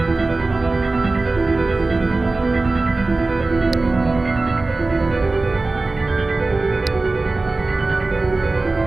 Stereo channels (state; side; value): quieter; left; 3.3 dB